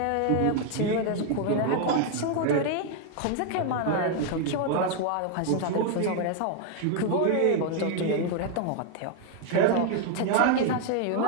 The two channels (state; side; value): different; both; correlation 0.00